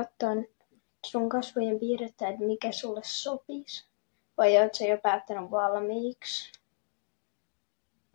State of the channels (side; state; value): right; silent; digital silence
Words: sun kasvojen piirrettä, että mikä sulle sopisi. Vai oot sä jo päättänyt valmiiksi?